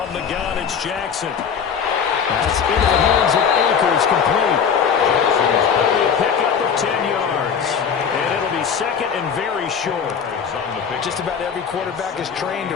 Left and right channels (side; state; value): right; quieter; 6.9 dB